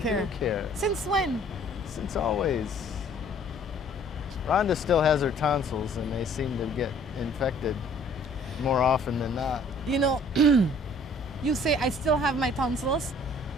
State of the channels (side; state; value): both; normal; correlation 0.56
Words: do care. Since when? Since always. Rhonda still has her tonsils, and they seem to get infected more often than not. You know, you say I still have my tonsils.